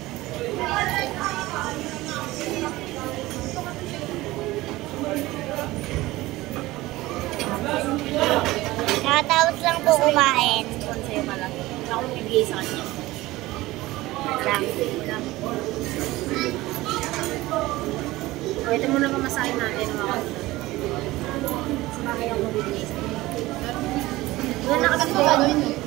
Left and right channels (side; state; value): left; quieter; 18.5 dB